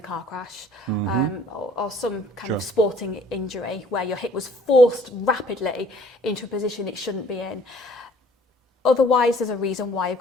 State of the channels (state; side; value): normal; both; correlation 0.56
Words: car crash, or some kind of sporting injury where your hip was forced rapidly into a position it shouldn't be in. Otherwise, there's a reason why you've